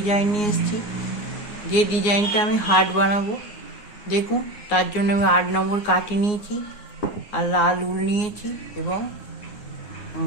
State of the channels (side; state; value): right; late; 9.6 ms